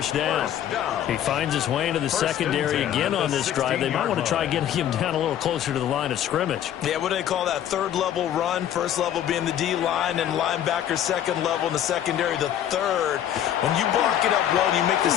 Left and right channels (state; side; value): quieter; right; 10.7 dB